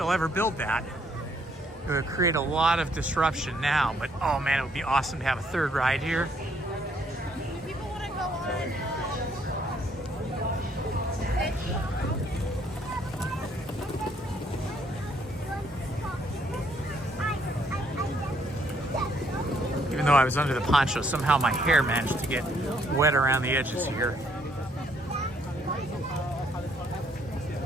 ever build that. It would create a lot of disruption now, but oh man, it would be awesome to have a third ride here. People want to go on. Even though I was under the poncho, somehow my hair managed to get wet around the edges here.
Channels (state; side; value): normal; both; correlation 0.68